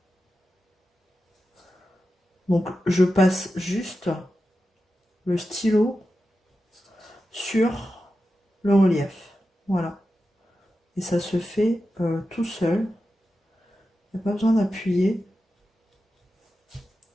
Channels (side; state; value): both; normal; correlation 0.91